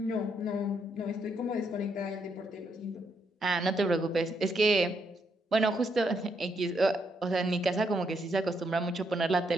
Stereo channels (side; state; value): both; normal; correlation 0.77